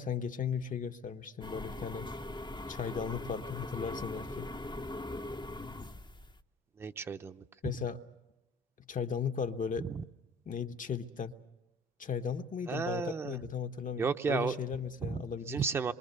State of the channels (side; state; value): both; normal; correlation 0.49